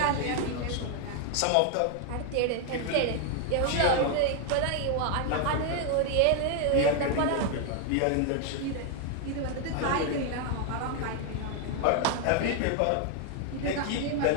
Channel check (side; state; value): both; different; correlation 0.00